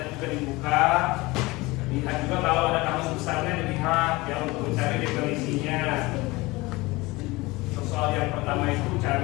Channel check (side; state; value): right; quieter; 21.9 dB